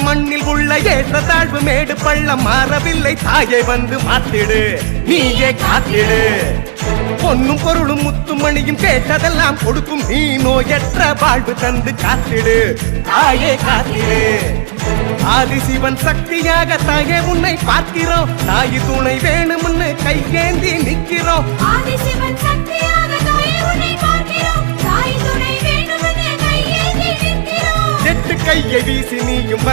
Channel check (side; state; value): left; silent; digital silence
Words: மண்ணில் உள்ள ஏற்ற தாழ்வு மேடு பள்ளம் மாறவில்லை. தாயை வந்து மாத்திடு, நீயே காத்திடு. பொன்னும் பொருளும் முத்துமணியும் கேட்டதெல்லாம் கொடுக்கும். நீ நோயற்ற வாழ்வு தந்து காத்திடு, தாயே காத்திடு. ஆதிசிவன் சக்தியாக தாயே உன்னை பார்க்கிறோம். தாய் துணை வேணும்னு கையேந்தி நிக்கிறோம். ஆதிசிவன் சக்தியாக தாயே உன்னை பார்க்கிறோம். தாய் துணை வேணும்னு கையேந்தி நிக்கிறோம். எட்டு கையை வீசி நீயும்